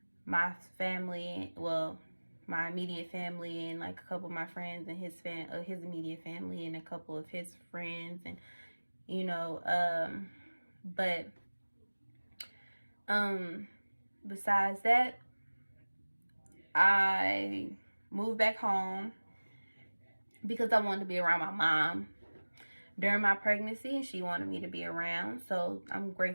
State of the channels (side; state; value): both; inverted; correlation -1.00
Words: my family, well, my immediate family and like a couple of my friends and his immediate family and a couple of his friends, and you know, besides that, I moved back home because I wanted to be around my mom during my pregnancy and she wanted me to be around. So I'm